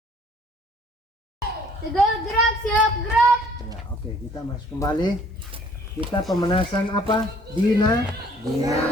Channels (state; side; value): normal; both; correlation 0.58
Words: Tegal gerak, siap gerak. Ya, oke, kita masuk kembali. Kita pemanasan apa?